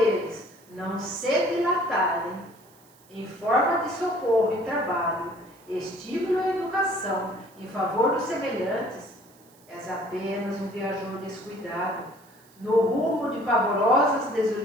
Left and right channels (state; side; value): noise; right; hiss, 28 dB below the sound